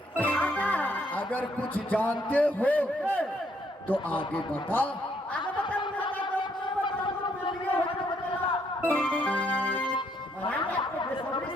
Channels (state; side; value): normal; both; correlation 0.71